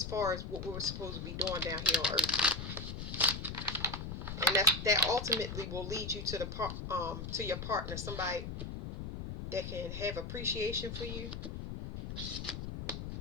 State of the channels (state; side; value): noise; left; rumble, 6 dB below the sound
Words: far as what we're supposed to be doing down here on earth. And that ultimately will lead you to to your partner, somebody that can have appreciation for you